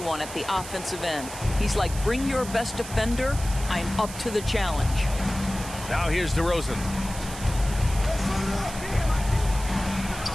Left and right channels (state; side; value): noise; right; hiss, 12 dB below the sound